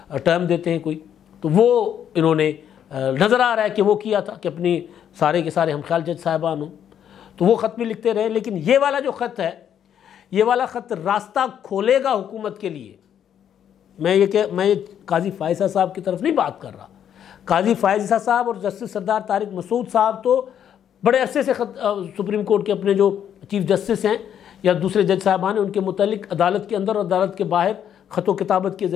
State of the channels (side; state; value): right; quieter; 9.3 dB